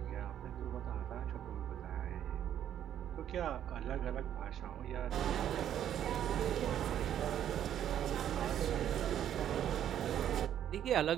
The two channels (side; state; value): left; quieter; 10.4 dB